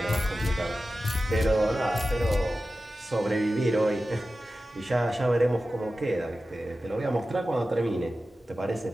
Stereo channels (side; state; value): both; normal; correlation 0.94